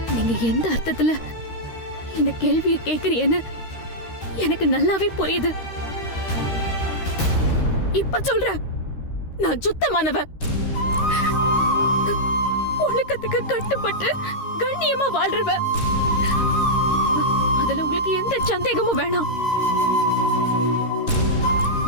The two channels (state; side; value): late; right; 13 ms